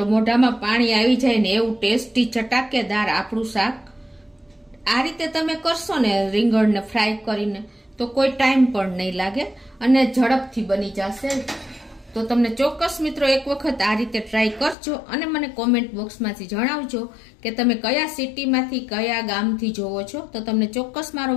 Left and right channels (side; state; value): right; drops out; at 14.8 s